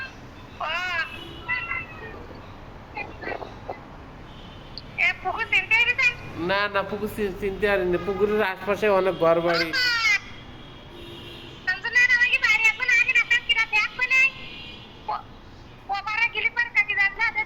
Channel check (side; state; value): both; identical; correlation 1.00